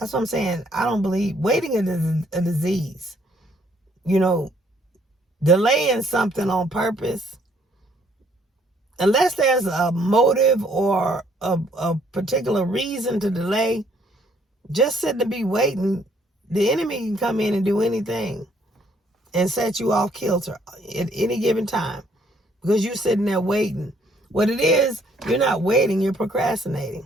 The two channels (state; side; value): normal; both; correlation 0.65